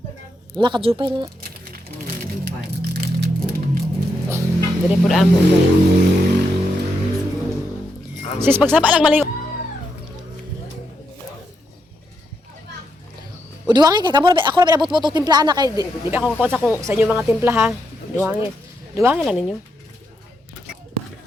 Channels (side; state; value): both; normal; correlation 0.81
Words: nakajupay na. Dili pud amo guys. Sis pagsaba lang maliw. O duwangi kay kamo ako na pinabot mo tong timplahan na kay di ba ako kakuha sa inyo mga timpla ha. Duwangi. Duwangi lang ninyo.